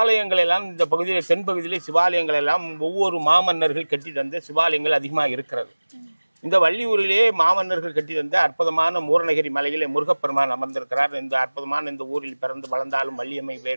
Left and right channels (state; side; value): inverted; both; correlation -1.00